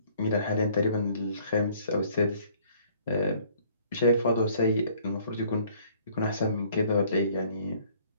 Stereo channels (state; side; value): inverted; both; correlation -0.59